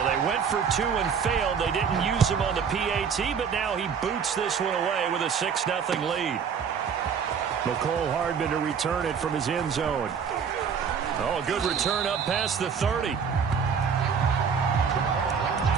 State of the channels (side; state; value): left; quieter; 6.7 dB